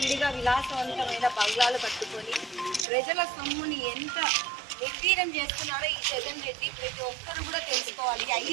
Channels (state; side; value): drops out; left; at 2.9 s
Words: విలాసవంతమైన బంగ్లాలు కట్టుకొని ప్రజల సొమ్ముని ఎంత నిర్వీర్యం చేస్తున్నారో ఈ జగన్ రెడ్డి ప్రతి ఒక్కరు కూడా తెలుసుకోవాలి.